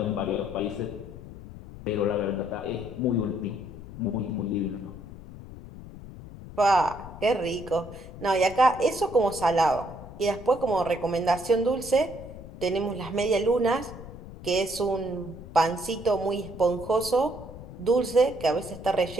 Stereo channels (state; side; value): noise; left; rumble, 14 dB below the sound